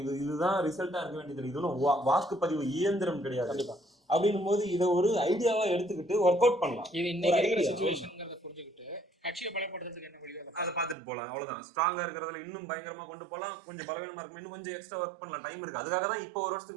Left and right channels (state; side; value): drops out; left; at 11.0 s